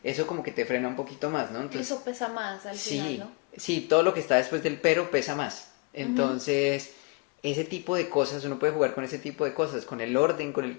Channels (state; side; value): quieter; right; 29.9 dB